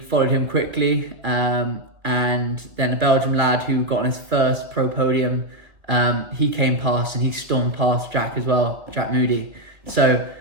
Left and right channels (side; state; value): left; late; 2.2 ms